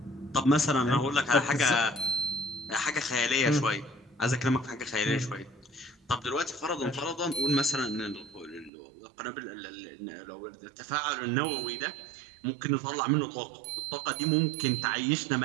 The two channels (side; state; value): left; drops out; at 8.7 s